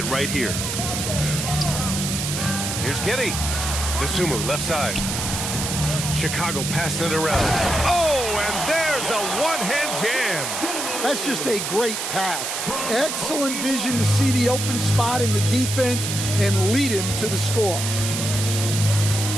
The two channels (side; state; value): right; noise; hiss, 3 dB below the sound